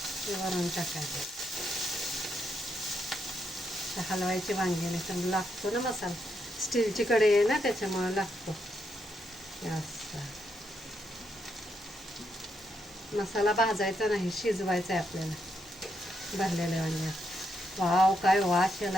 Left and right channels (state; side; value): normal; both; correlation 0.80